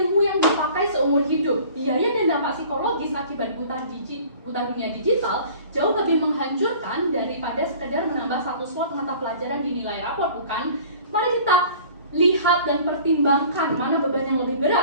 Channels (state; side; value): inverted; both; correlation -0.48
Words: yang dipakai seumur hidup. Biaya dan dampak psikologis akibat buta dunia digital jauh lebih menghancurkan daripada sekedar menambah satu slot mata pelajaran di nilai rapor, bukan? Mari kita lihat dan pertimbangkan mana beban yang lebih